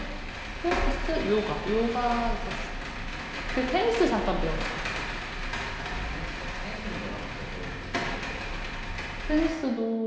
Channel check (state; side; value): identical; both; correlation 1.00